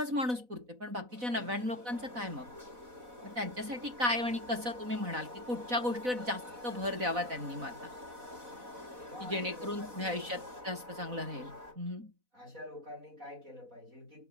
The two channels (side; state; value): left; late; 4.0 ms